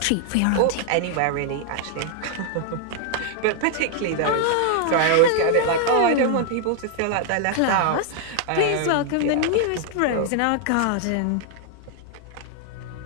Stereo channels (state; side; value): different; both; correlation 0.00